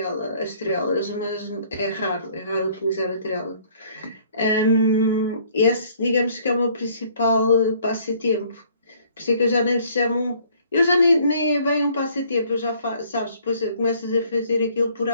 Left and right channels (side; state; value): both; inverted; correlation -0.59